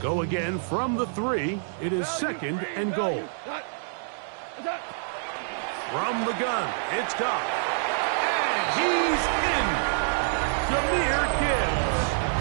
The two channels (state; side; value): silent; left; digital silence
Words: again from the 3. It is 2nd and goal. From the gun, it's Goff. And he's in. Jahmyr Gibbs.